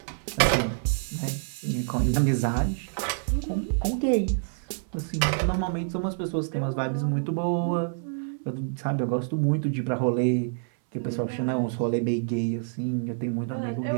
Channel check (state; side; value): silent; left; 60 dB below the other